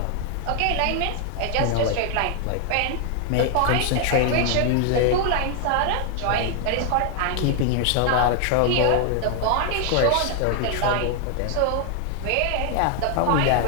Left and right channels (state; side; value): different; both; correlation 0.00